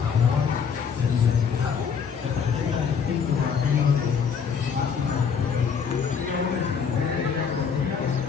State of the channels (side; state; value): right; quieter; 6.6 dB